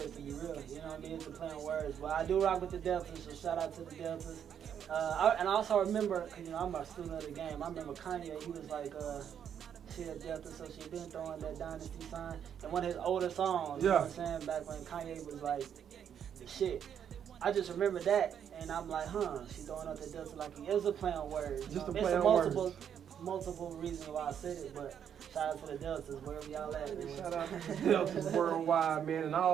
to be real. You know what I mean? It's a play on words. But I do rock with the Deltas, so shout out to the Deltas. And I also remember, because I'm a student of the game. I remember Kanye. He was like, she a Delta, so she been throwing that dynasty sign. And one of his older songs, you know what I'm saying, back when Kanye was like the shit. I just remember that, and I'm like, she throwing out the Delta like it was a play on words. Just a play on words. Multiple reasons why I said it, but shout out to the Deltas, wherever y'all at, man. Shout out to the Deltas worldwide, man, and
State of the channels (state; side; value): quieter; left; 8.6 dB